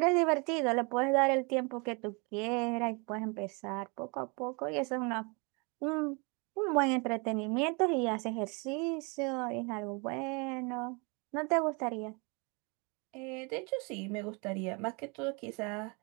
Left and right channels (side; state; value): left; quieter; 31.3 dB